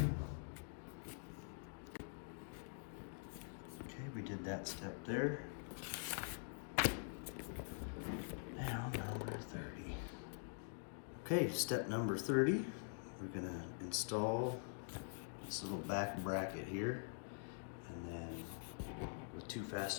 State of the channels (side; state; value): right; silent; digital silence